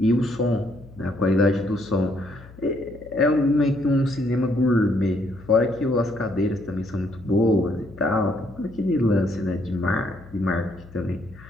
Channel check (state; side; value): noise; left; hum, 20 dB below the sound